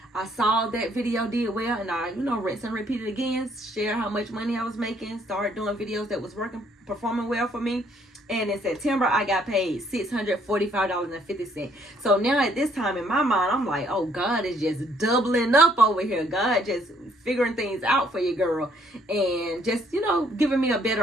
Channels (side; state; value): both; normal; correlation 0.66